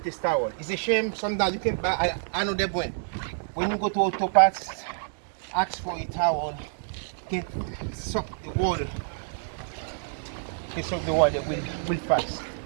this towel. It's a shame sometimes you can buy, I know that when you go to auto parts, ask for a towel, can suck the water. Can suck the water will fast.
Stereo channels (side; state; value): left; silent; 60 dB below the other